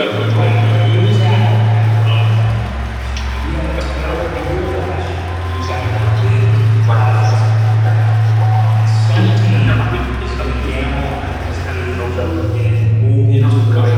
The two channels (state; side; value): identical; both; correlation 1.00